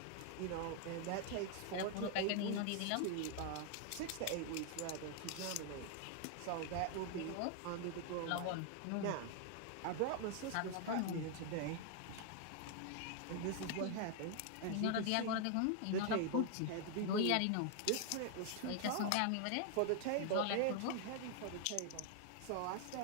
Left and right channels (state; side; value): different; both; correlation 0.00